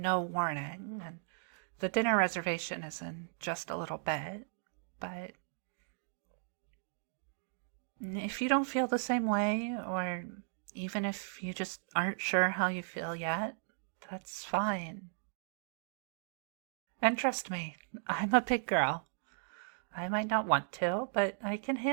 warning, and the dinner reservation is in just a little bit, but if you don't feel the same way, or even if you just aren't sure how you feel yet, that's fine. And trust me, I'm a big girl. I might not want to, but I can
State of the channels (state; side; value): silent; left; digital silence